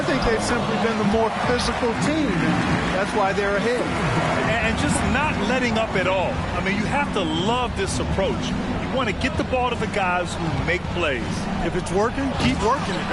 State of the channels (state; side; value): identical; both; correlation 1.00